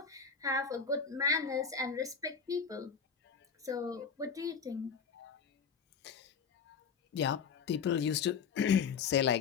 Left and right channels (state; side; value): quieter; right; 6.2 dB